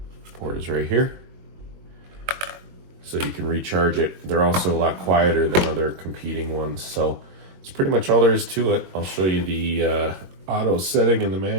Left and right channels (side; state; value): left; late; 22 ms